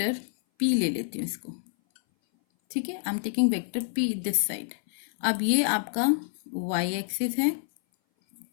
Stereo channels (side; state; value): right; silent; 57 dB below the other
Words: पी ले लेती हूँ इसको। ठीक है, I am taking vector P this side. अब ये आपका वाई एक्सिस है